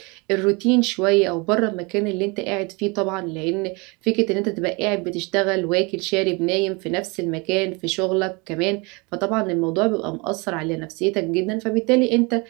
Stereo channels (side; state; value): left; quieter; 28.3 dB